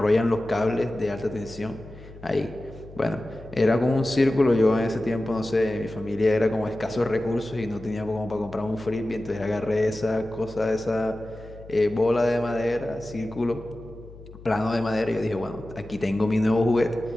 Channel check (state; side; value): noise; left; hum, 18 dB below the sound